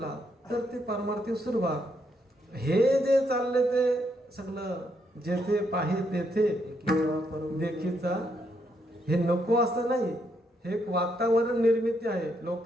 तर ते परमार्थिक सुरुवात. हे जे चालले ते सगळं जेथे पाहे तेथे देखीचा, हे नको असं नाही. हे एक वातावरण निर्मिती आहे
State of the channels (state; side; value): normal; both; correlation 0.76